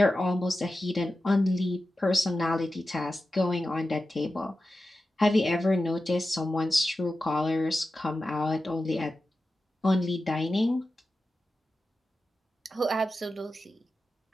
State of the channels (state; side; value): normal; both; correlation 0.93